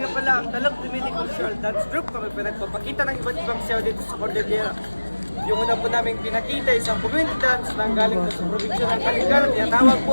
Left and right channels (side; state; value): both; inverted; correlation -1.00